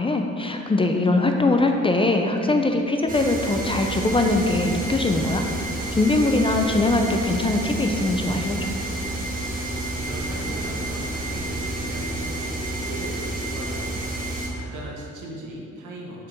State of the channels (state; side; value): normal; both; correlation 0.59